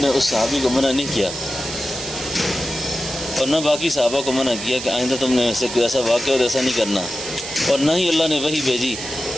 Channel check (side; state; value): right; noise; hiss, 8 dB below the sound